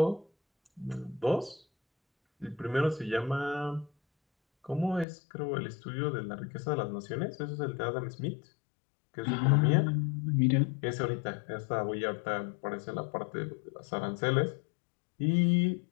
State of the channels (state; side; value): drops out; right; at 5.1 s